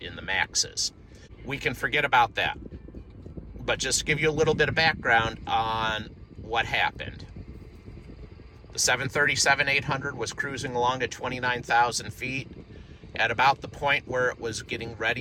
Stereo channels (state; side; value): identical; both; correlation 1.00